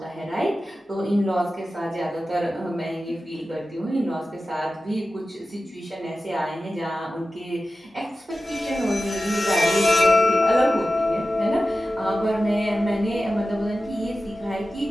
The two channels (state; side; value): normal; both; correlation 0.94